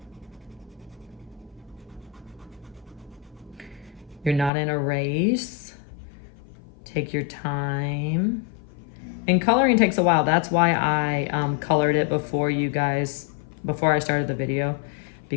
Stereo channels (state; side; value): drops out; right; at 4.5 s